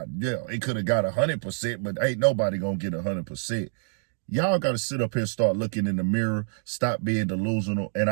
yeah, it could have got 100%, but ain't nobody gonna get 100%. Y'all got to sit up here and start looking in the mirror, stop being delusional. And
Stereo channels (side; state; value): left; silent; digital silence